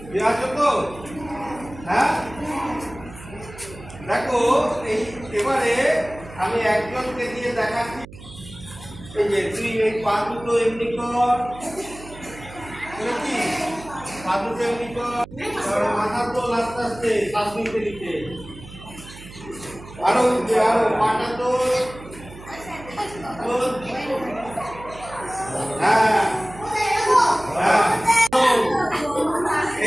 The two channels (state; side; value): noise; right; hum, 17 dB below the sound